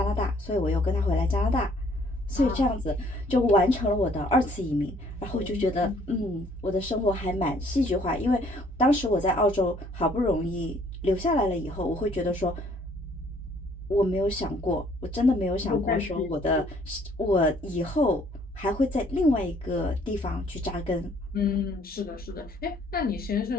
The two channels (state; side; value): normal; both; correlation 0.61